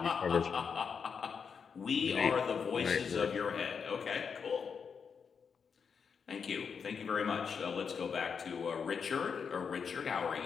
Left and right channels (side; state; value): right; quieter; 6.2 dB